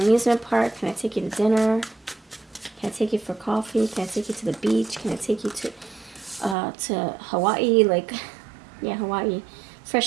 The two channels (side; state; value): left; drops out; at 6.6 s